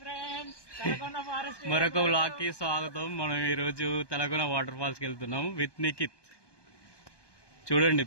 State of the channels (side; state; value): right; late; 1.2 ms